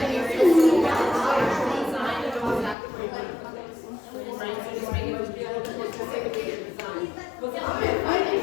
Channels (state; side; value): drops out; right; at 2.8 s